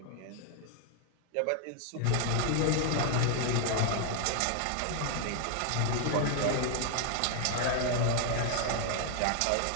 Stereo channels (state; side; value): different; both; correlation 0.00